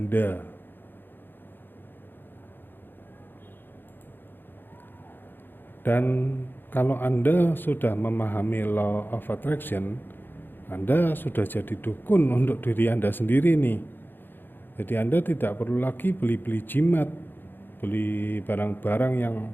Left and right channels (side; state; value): right; late; 0.097 ms